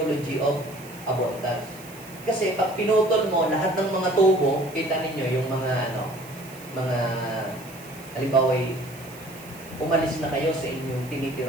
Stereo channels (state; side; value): noise; right; hiss, 20 dB below the sound